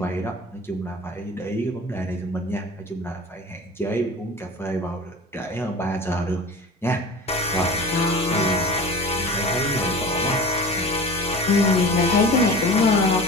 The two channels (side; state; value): both; normal; correlation 0.37